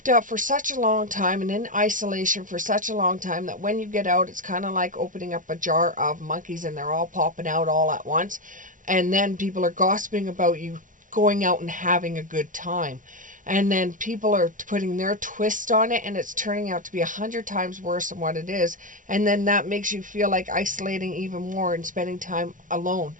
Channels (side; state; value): left; late; 0.38 ms